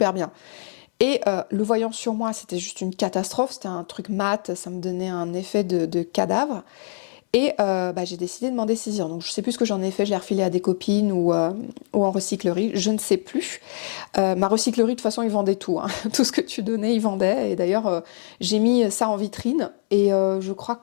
bien. Et le voyant sur moi, c'était juste une catastrophe, c'était un truc mat, ça me donnait un effet de cadavre. Et j'ai décidé de m'en dessaisir. Donc je sais plus ce que j'en ai fait, je l'ai refilé à des copines ou en recyclerie, je ne sais plus. Ma recyclerie, de toute façon, ils vendaient tout, hein. Tout ce que tu donnais, ils vendaient. Et d'ailleurs, j'ai mis ça en vitrine. Et je crois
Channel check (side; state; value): right; silent; 63 dB below the other